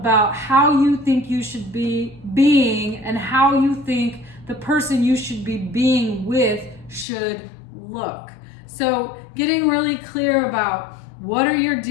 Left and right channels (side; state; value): right; drops out; at 7.1 s